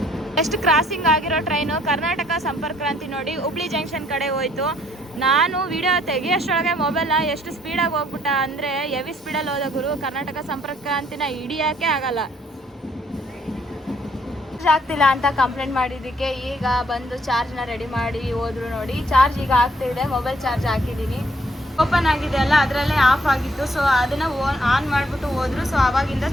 ಎಷ್ಟು ಕ್ರಾಸಿಂಗ್ ಆಗಿರೋ ಟ್ರೈನು ಕರ್ನಾಟಕ ಸಂಪರ್ಕ ಕ್ರಾಂತಿ ನೋಡಿ ಹುಬ್ಳಿ ಜಂಕ್ಷನ್ ಕಡೆ ಹೋಯ್ತು. ನಾನು ವಿಡಿಯೋ ತೆಗಿಯೋಷ್ಟೊಳಗೆ ಮೊಬೈಲ್ನ ಎಷ್ಟು ಸ್ಪೀಡಾಗಿ ಹೋಗ್ಬಿಟ್ಟ ಅಂದರೆ ಹೆವಿ ಸ್ಪೀಡಲ್ಲಿ ಹೋದ ಗುರು. ಕರ್ನಾಟಕ ಸಂಪರ್ಕ ಕ್ರಾಂತಿನ ಹಿಡಿಯೋಕ್ಕೆ ಆಗಲ್ಲ. ಚಾರ್ಜ್ ಆಗ್ತಿಲ್ಲ ಅಂತ ಕಂಪ್ಲೇಂಟ್ ಮಾಡಿದ್ದಕ್ಕೆ ಈಗ ಬಂದು ಚಾರ್ಜ್ನ ರೆಡಿ ಮಾಡಿ ಹೋದ್ರು ನೋಡಿ. ಚಾರ್ಜ್ ಈಗ ಆಗ್ತಿದೆ. ಮೊಬೈಲ್ ಚಾರ್ಜ್ ಹಾಕಿದ್ದೀನಿ. ಓಪನ್ ಆಗಿದೆ ಅಲ್ಲ, ಅದರಲ್ಲೇ ಆಫ್ ಆಗಿತ್ತು. ಸೊ ಅದನ್ನು ಆನ್ ಮಾಡಿಬಿಟ್ಟು ಹೋದ್ರು. ಸೊ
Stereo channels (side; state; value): both; normal; correlation 0.66